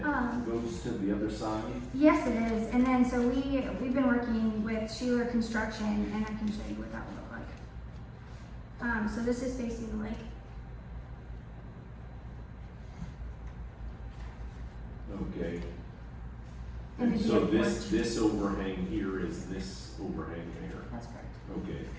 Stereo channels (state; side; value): identical; both; correlation 1.00